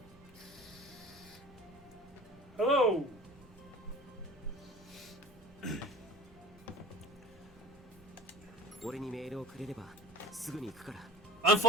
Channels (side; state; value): both; normal; correlation 0.42